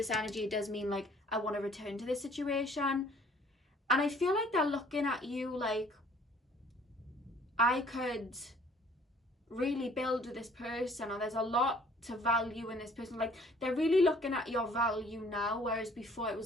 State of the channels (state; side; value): normal; both; correlation 0.56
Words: energy, it does mean, like, I want to return to this situation. And I feel like they're looking at you like, I could really build with this person. Or there's a lot to value in this person. Like, they're really looking at your value now, whereas before it was